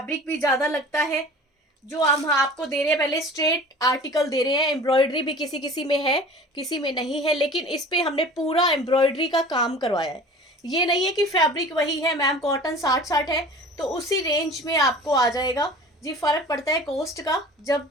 भी ज़्यादा लगता है। जो हम आपको दे रहे हैं पहले स्ट्रेट आर्टिकल दे रहे हैं। एम्ब्रॉयडरी भी किसी किसी में है, किसी में नहीं है, लेकिन इस पे हमने पूरा एम्ब्रॉयडरी का काम करवाया है। ये नहीं है कि फैब्रिक वही है मैम, कॉटन 60-60 है तो उसी रेंज में आपको आ जाएगा जी। फर्क पड़ता है कॉस्ट का। जब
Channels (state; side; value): normal; both; correlation 0.42